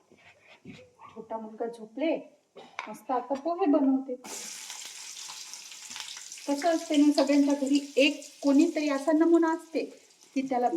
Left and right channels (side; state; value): both; identical; correlation 1.00